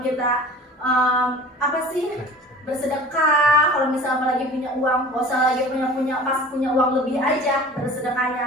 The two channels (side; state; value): both; normal; correlation 0.41